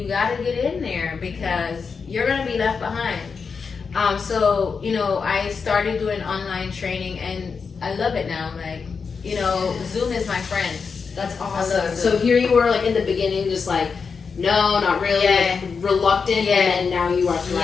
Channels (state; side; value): quieter; right; 5.4 dB